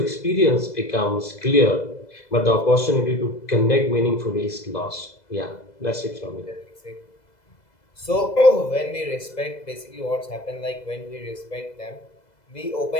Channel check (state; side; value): late; right; 2.0 ms